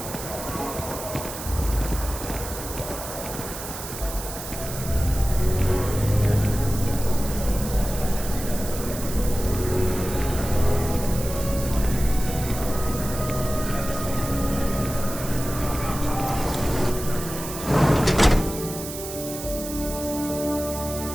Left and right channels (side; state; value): right; noise; hiss, 9 dB below the sound